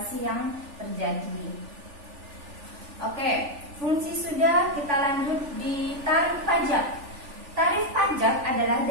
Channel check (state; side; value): late; left; 3.4 ms